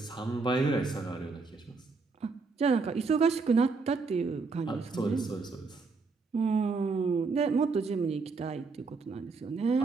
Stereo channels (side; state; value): left; quieter; 4.3 dB